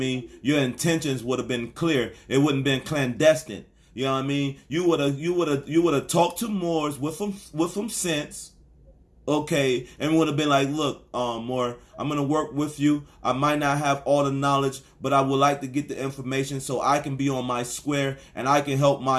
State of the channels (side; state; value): both; identical; correlation 1.00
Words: Your intentions would have been clear. It wouldn't have been clandestine. You know what I mean? You would have talked to Moors with some sense. Okay, and would have been like, look, Moore, I'm gonna work with you. I might not have all the knowledge, but I would like to get the information so I can be on my square and I can help